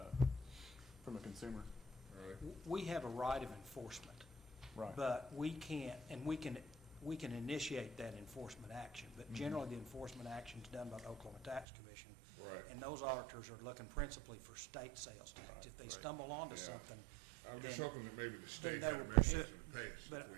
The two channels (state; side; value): drops out; left; at 11.7 s